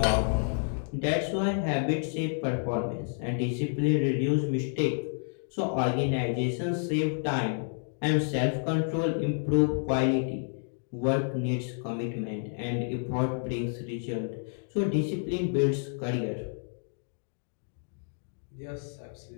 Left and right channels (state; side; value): silent; right; digital silence